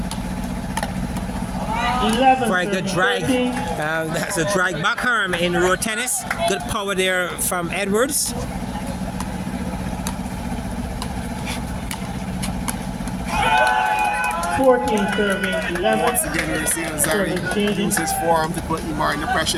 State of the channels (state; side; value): identical; both; correlation 1.00